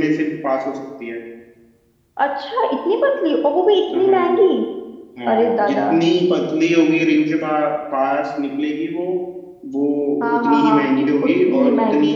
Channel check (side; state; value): both; identical; correlation 1.00